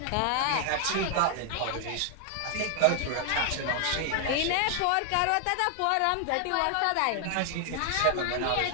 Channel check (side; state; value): both; different; correlation 0.00